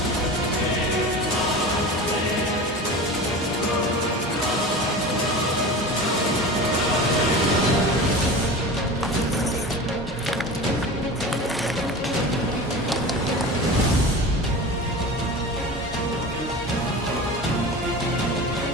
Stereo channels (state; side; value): normal; both; correlation 0.32